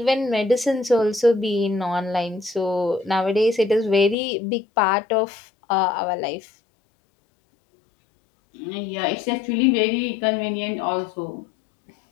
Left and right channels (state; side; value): drops out; right; at 4.2 s